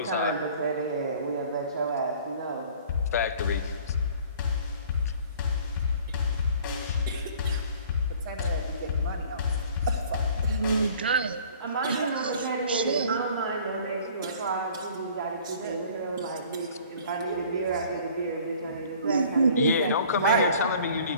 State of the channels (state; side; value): inverted; both; correlation -0.51